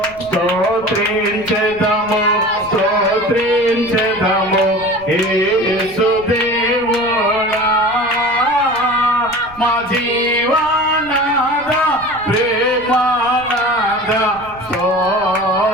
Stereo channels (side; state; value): right; noise; rumble, 21 dB below the sound